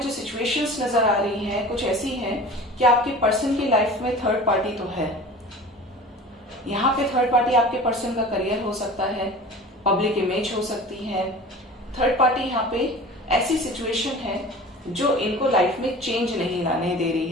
जो सिचुएशंस नजर आ रही हैं कुछ ऐसी हैं कि आपके पर्सन की लाइफ में थर्ड पार्टी तो है। यहाँ पे थर्ड पार्टी आपके पर्सन का करियर हो सकता है, पब्लिक इमेज हो सकती है। थर्ड पार्टी यहाँ पे ऐसी सिचुएशन है जो इनको लाइफ में चेंज नहीं लाने दे रही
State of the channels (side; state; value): both; normal; correlation 0.39